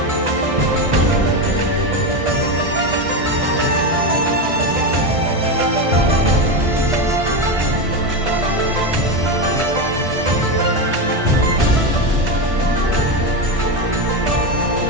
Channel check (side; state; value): left; late; 1.6 ms